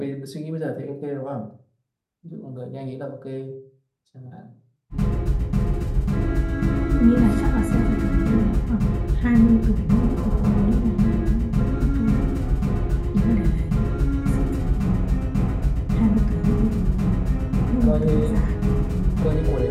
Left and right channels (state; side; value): identical; both; correlation 1.00